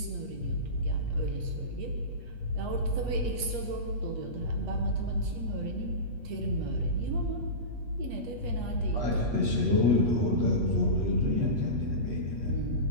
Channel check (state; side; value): late; left; 8.4 ms